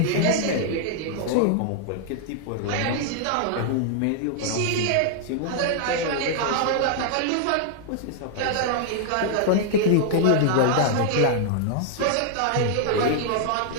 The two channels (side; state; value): both; different; correlation -0.01